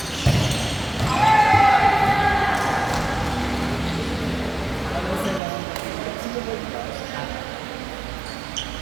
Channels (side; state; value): left; drops out; at 5.4 s